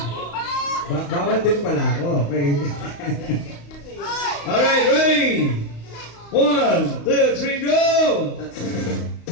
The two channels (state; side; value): late; right; 35 ms